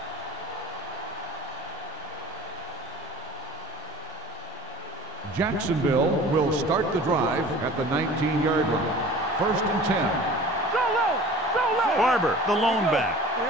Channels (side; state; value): both; normal; correlation 0.43